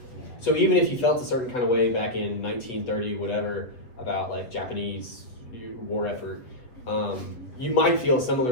Yeah. So even if you felt a certain kind of way back in 1930, whatever, about like Japanese war effort, you might feel a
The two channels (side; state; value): right; late; 7.8 ms